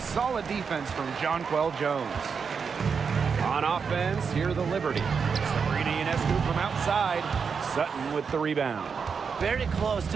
defense from Jonquel Jones. On offense, here the Liberty. Sabrina Ionescu from outside. Sutton with the rebound. Very close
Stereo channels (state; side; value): quieter; left; 5.9 dB